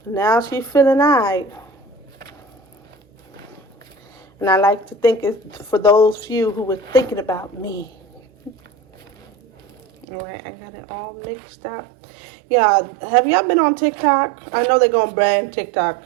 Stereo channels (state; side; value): drops out; left; at 10.1 s